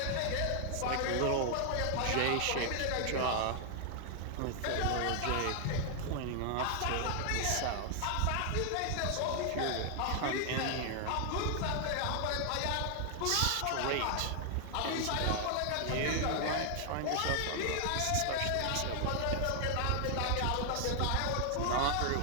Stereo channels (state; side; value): different; both; correlation 0.00